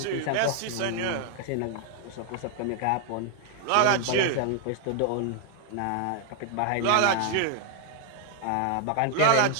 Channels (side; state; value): both; different; correlation 0.00